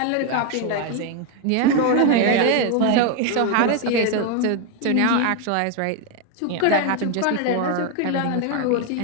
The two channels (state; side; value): different; both; correlation 0.01